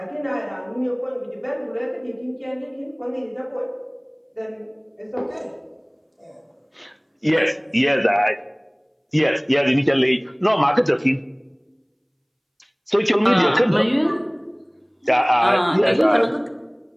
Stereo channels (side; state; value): both; identical; correlation 1.00